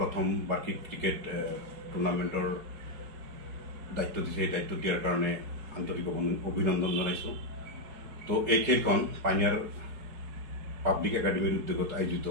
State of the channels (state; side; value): late; left; 5.3 ms